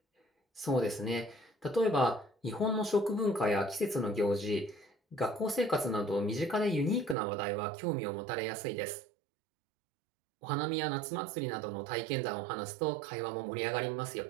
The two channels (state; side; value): drops out; left; at 7.2 s